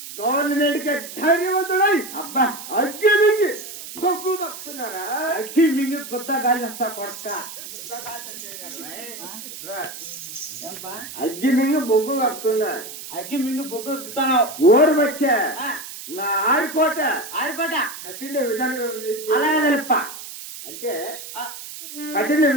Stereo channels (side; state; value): right; noise; hiss, 12 dB below the sound